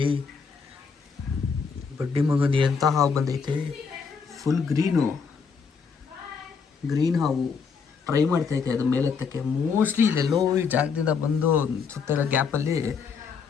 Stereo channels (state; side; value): quieter; right; 5.7 dB